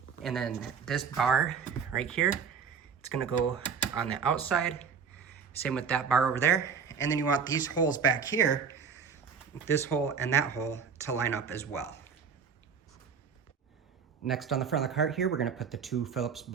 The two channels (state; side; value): quieter; left; 6.3 dB